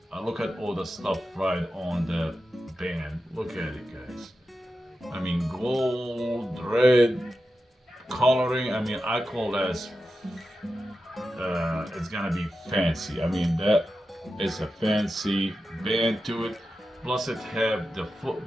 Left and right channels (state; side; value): normal; both; correlation 0.91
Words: Look at all the stuff right on the band. Look at it, guys. I mean, gold, red, coloring. I call that it's gonna be fancy. That is a fancy band to it. Plus, it have the foot